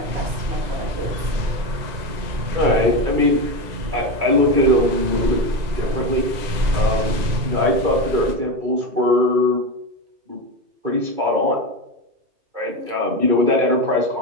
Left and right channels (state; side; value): late; left; 2.0 ms